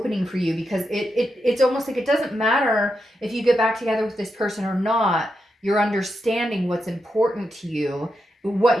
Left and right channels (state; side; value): normal; both; correlation 0.86